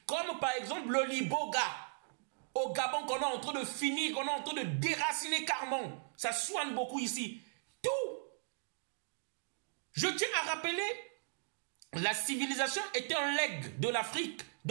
Comme par exemple le liboga. Au Gabon, qu'on est en train de finir, qu'on est en train de déraciner carrément. Ça soigne beaucoup ici. Tout. Je tiens à rappeler, la civilisation était un legs de l'Afrique,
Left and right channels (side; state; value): left; silent; digital silence